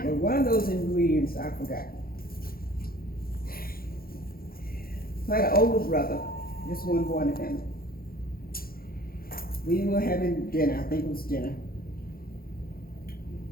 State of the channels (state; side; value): late; right; 0.43 ms